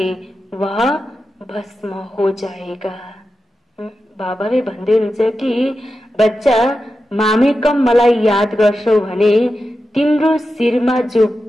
वह भस्म हो जाएगा। बाबाले भन्दै हुनुहुन्छ कि बच्चा मामे कम मलाई याद गर्छौ भने तिम्रो सिरमा जो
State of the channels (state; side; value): normal; both; correlation 0.91